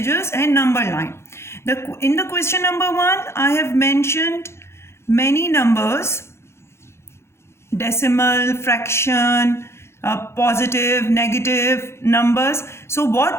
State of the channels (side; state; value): right; late; 0.13 ms